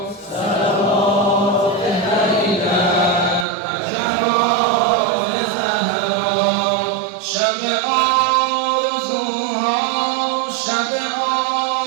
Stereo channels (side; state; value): left; drops out; at 3.5 s